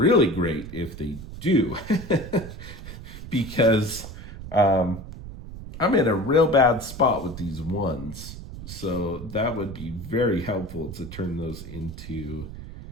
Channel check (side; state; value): right; noise; rumble, 12 dB below the sound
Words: great if they do, because I'm in a real bad spot with these 1s. So that would be very helpful to turn those into